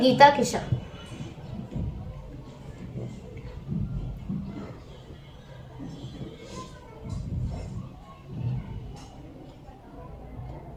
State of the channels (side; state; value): both; identical; correlation 1.00